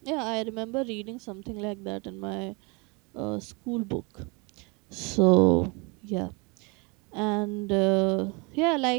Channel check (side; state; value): left; quieter; 29.7 dB